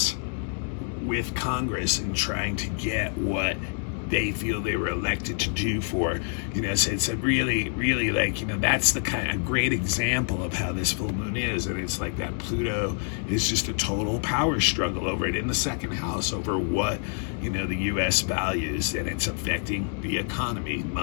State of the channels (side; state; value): right; silent; 56 dB below the other